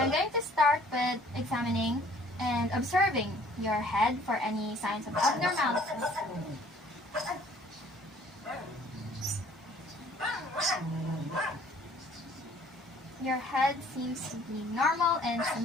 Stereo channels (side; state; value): both; normal; correlation 0.56